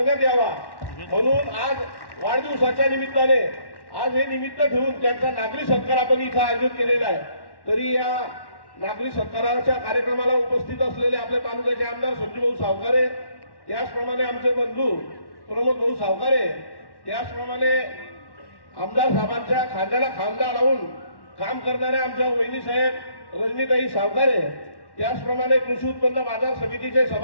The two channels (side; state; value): right; late; 1.1 ms